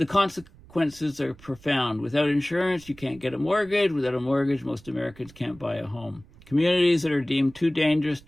consequences are profound. Without insurance, you can't get a mortgage. Without a mortgage, most Americans can't buy a home. Communities that are deemed too dangerous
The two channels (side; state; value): right; noise; rumble, 24 dB below the sound